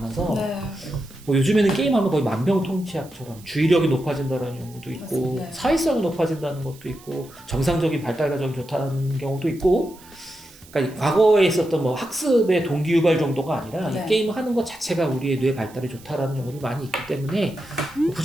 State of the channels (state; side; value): noise; right; hiss, 23 dB below the sound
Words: 네. 뭐 요즘에는 게임하면 거의 만병통치약처럼 주의력이 높아진다는 연구도 있고 맞습니다. 사회성이 높아진다는 것도 있고 정상적인 발달 과정이 좋다는 경우도 있고 그러니까 과거에 있었던 뭐 학습의 동기유발 정도가 아니라 네. 이 게임을 하는 것 자체가 우리의 뇌 발달에 좋다라는 연구도 많이 있기 때문에